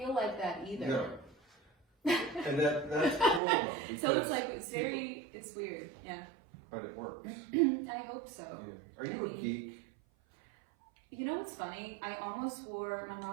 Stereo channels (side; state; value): left; drops out; at 3.4 s